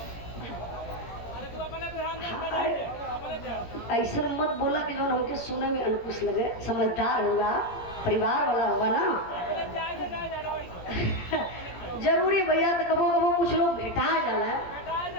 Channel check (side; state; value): right; late; 17 ms